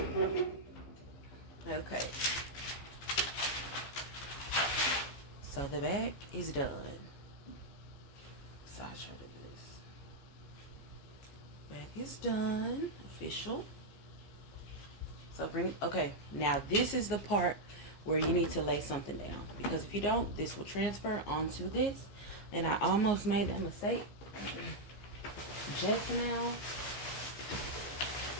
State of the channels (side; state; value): right; late; 15 ms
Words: on. Okay. So the back is done. Side shot of this. Back is done. Official. So bring, okay, now this is the part where you need to lay something down, because if you don't, this will transfer onto this. And I almost made that mistake just now.